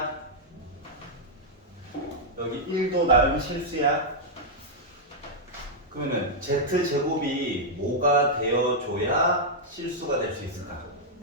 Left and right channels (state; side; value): normal; both; correlation -0.06